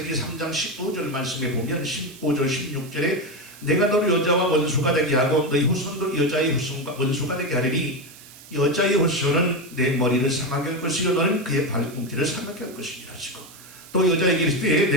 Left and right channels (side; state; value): right; noise; hiss, 20 dB below the sound